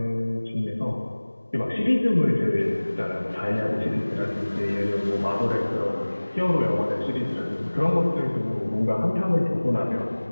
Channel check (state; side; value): inverted; both; correlation -1.00